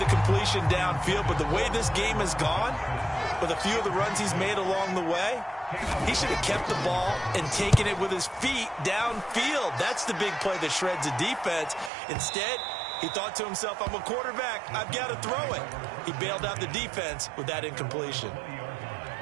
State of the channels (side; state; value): left; drops out; at 11.9 s